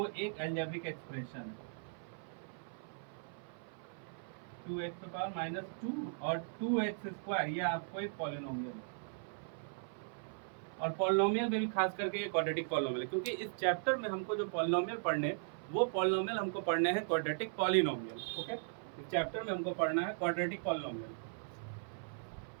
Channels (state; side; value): silent; left; 52 dB below the other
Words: एक अलजेब्रिक एक्सप्रेशन है। 2x पे पावर -2 और 2x², ये आपको एक पॉलिनोमियल है। और पॉलिनोमियल में भी खास करके ये क्वाड्रेटिक पॉलिनोमियल है, क्योंकि इस चैप्टर में हमको जो पॉलिनोमियल पढ़ने वो पॉलिनोमियल हमको पढ़ने हैं क्वाड्रेटिक पॉलिनोमियल। ओके, इस चैप्टर में हमको पढ़ना है क्वाड्रेटिक पॉलिनोमियल।